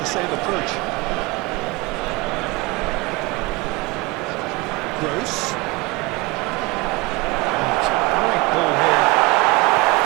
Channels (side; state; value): left; quieter; 23.3 dB